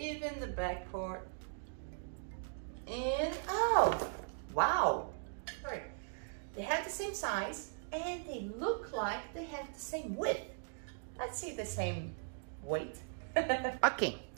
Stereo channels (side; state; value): left; silent; digital silence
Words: the back part. And oh, wow, sorry, they have the same size and they look like they have the same width. Let's see the same weight. Okay,